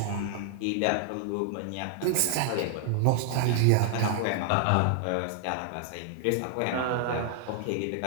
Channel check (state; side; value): different; both; correlation 0.00